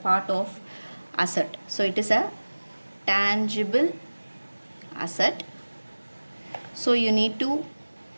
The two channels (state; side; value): inverted; both; correlation -1.00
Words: of asset. So it is a tangible asset. So you need to